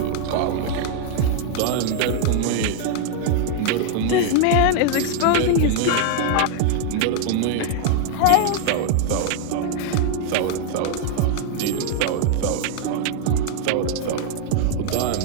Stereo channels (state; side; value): different; both; correlation 0.00